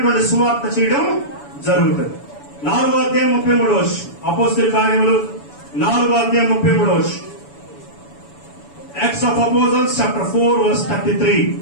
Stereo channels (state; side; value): late; right; 7.0 ms